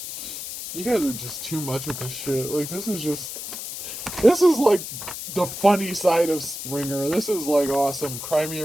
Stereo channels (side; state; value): left; noise; hiss, 8 dB below the sound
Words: You guys are just too much with this shit. Like, this is like the funny side of Springer. This is like awesome. Cry me